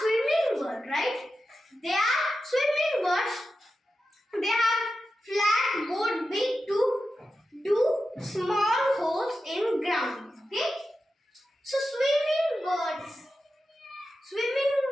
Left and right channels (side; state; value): both; normal; correlation 0.91